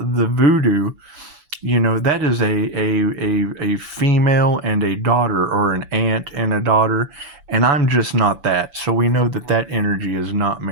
the voodoo, that is a female and a daughter, or an aunt and a daughter, and I'm just not that. So we know that that energy is not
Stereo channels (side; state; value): left; late; 7.0 ms